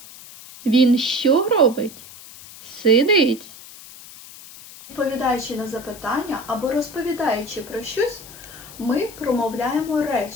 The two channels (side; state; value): left; noise; hiss, 17 dB below the sound